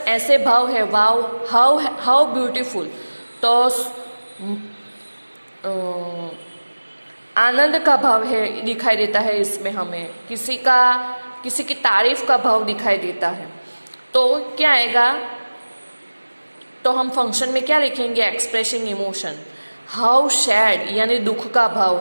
ऐसे भाव है वाव, हाउ ब्यूटीफुल, तो आनंद का भाव है दिखाई देता है इसमें, हमें किसी की तारीफ का भाव दिखाई देता है। तो क्या आएगा? तो हम फंक्शन में क्या लिखेंगे? Expressing emotion. हाउ सैड यानी दुख का भाव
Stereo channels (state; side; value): inverted; both; correlation -1.00